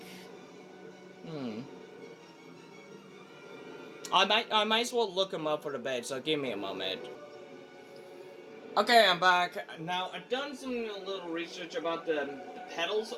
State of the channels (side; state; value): both; identical; correlation 1.00